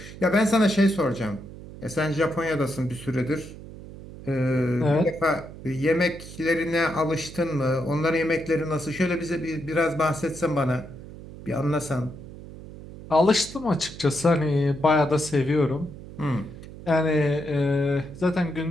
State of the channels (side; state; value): right; noise; hum, 15 dB below the sound